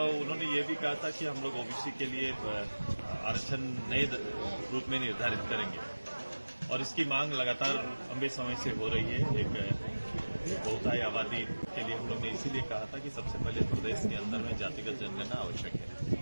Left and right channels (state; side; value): inverted; both; correlation -1.00